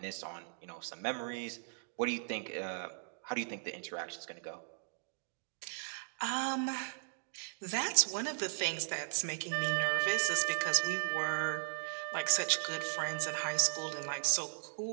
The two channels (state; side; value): silent; left; digital silence